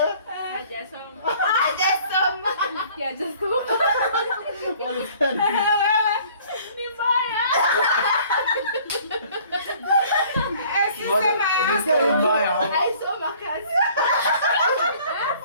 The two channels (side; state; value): both; inverted; correlation -0.54